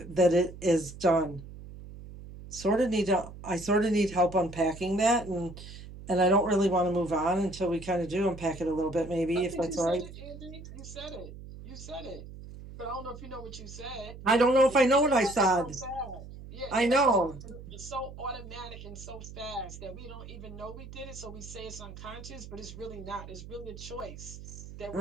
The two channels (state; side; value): noise; right; hum, 14 dB below the sound